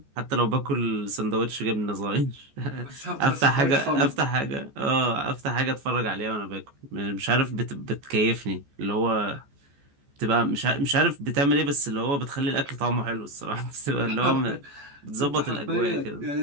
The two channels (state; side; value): late; left; 14 ms